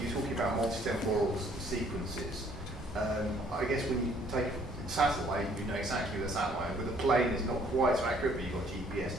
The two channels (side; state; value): both; normal; correlation 0.61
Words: you're talking about multi-temporal sequences. I guess when you take satellite, you know exactly the satellite. With a plane, it's not quite so accurate, but you've got GPS